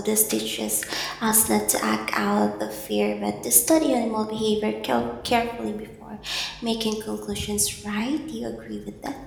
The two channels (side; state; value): both; identical; correlation 1.00